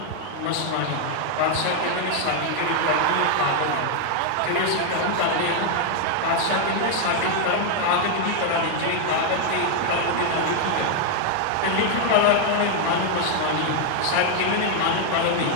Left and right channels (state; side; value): different; both; correlation 0.00